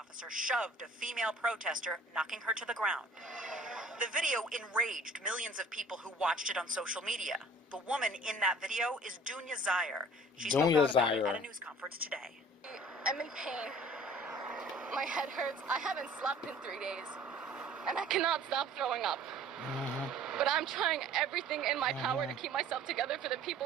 shoved a female protester, knocking her to the ground. The video enraged millions of people who watched it on social media. The woman in that video is Dounya Zayer. She spoke out about it at a news conference today. I'm in pain. My head hurts. I haven't slept in 3 days. And I cannot stop throwing up. But I'm trying everything in my power to keep myself together for the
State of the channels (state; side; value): normal; both; correlation 0.49